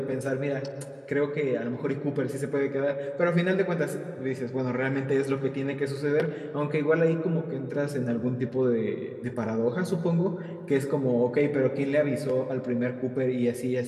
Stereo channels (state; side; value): identical; both; correlation 1.00